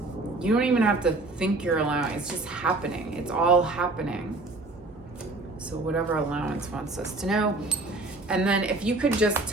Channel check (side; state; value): left; quieter; 3.1 dB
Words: You don't even have to think you're allowing. It's just happening. It's all happening. So whatever allowance wants us to know. And then if you could just